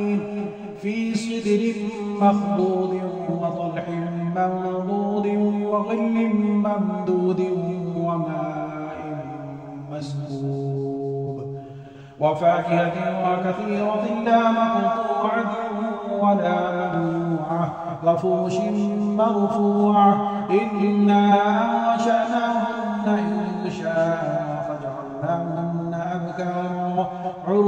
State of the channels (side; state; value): both; identical; correlation 1.00